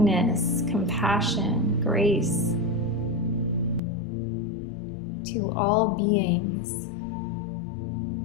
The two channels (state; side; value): drops out; right; at 3.8 s